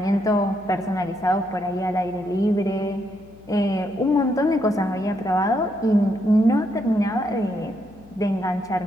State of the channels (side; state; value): left; noise; hum, 25 dB below the sound